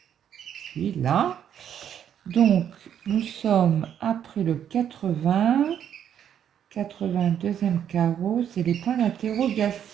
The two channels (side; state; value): left; quieter; 9.3 dB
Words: puis là. Donc, nous sommes après le 80, 82e carreau, c'est les points